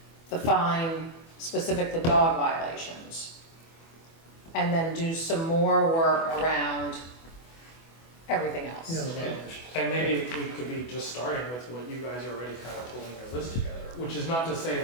the fine specific to dog violations, and then do some more work around everything else. Yeah, the violation. And maybe we could be just starting with what you guys are already kind of pulling your list together, which is not to say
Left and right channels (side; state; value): right; late; 24 ms